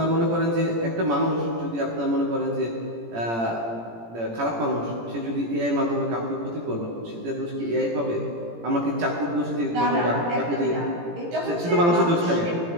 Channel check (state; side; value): late; left; 17 ms